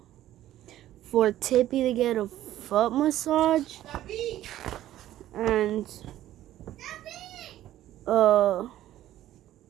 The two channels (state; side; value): quieter; left; 13.4 dB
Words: for Tippy to get a foot massage, and